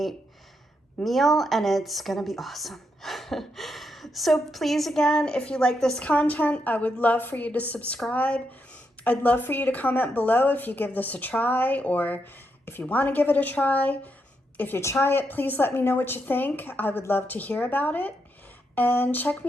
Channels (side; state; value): both; normal; correlation 0.81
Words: meal, and it's gonna be awesome. So please, again, if you like this content, I would love for you to subscribe. I'd love for you to comment below if you give this a try, or if you want to give it a try. If you try it, please let me know what you think. I would love to hear about it. And check